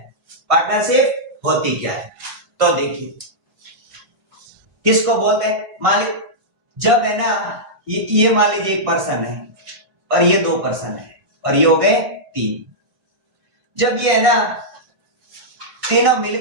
पार्टनरशिप होती क्या है? तो देखिए किसको बोलते हैं? मान ली जब है ना ये मान लीजिए एक पर्सन है और ये दो पर्सन है और ये हो गए तीन। जब ये है ना तीनों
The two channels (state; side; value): late; left; 1.5 ms